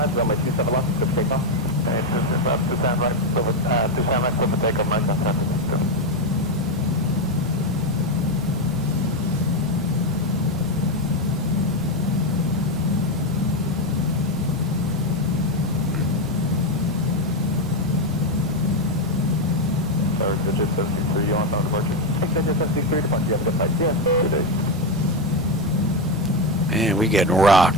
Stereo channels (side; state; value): both; normal; correlation 0.08